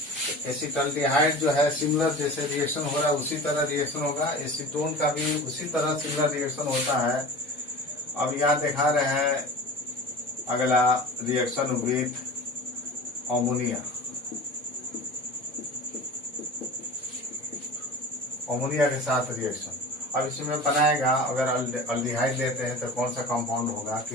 एसिटल्डिहाइड जो है सिमिलर जैसे रिएक्शन हो रहा है उसी तरह रिएक्शन होगा, एसीटोन का भी उसी तरह सिमिलर रिएक्शन होता है। अब यहाँ दिखा रहे हैं अगला रिएक्शन विथ अमोनिया के साथ रिएक्शन। अब इसमें बनाएगा, अगर अल्डिहाइड लेते हैं तो कौन सा कंपाउंड होगा,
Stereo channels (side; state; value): both; normal; correlation 0.36